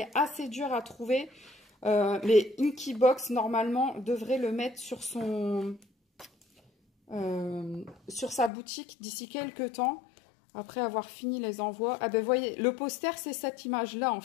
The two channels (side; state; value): right; drops out; at 8.5 s